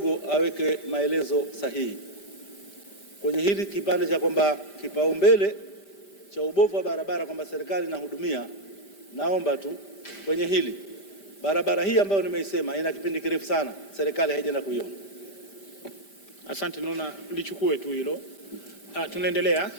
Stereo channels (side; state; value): right; late; 5.1 ms